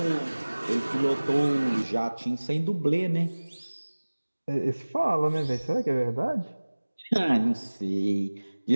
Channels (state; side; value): inverted; both; correlation -1.00